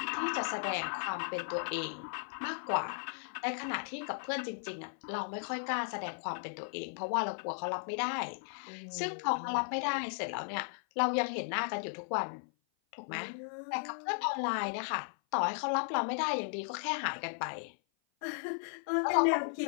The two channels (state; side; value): silent; right; 54 dB below the other